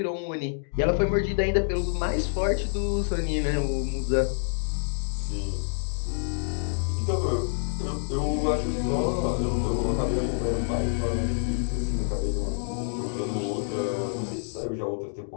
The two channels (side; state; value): right; silent; digital silence